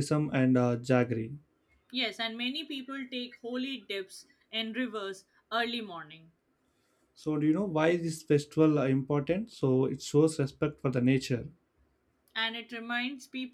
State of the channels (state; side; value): identical; both; correlation 1.00